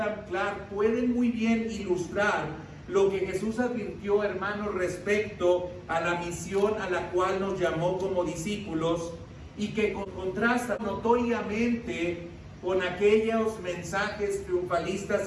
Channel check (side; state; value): both; identical; correlation 1.00